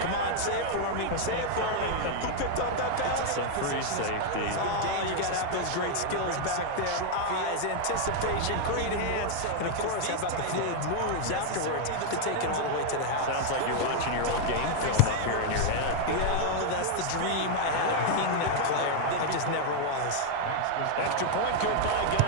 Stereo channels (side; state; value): both; different; correlation 0.00